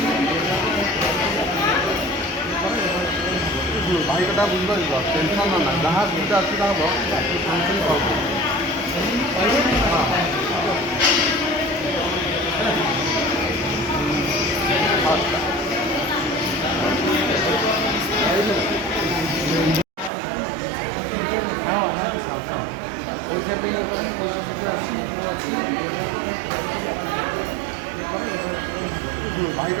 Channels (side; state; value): left; drops out; at 20.1 s